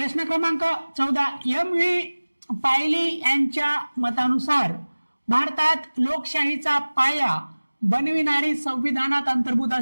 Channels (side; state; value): both; inverted; correlation -1.00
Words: क्रमांक 14, M.V. पायली यांच्या मतानुसार भारतात लोकशाहीचा पाया बनविणारी संविधानात अंतर्भूत